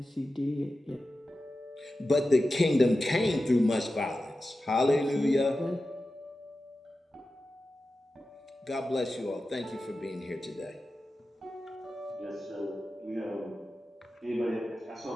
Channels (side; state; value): both; normal; correlation 0.93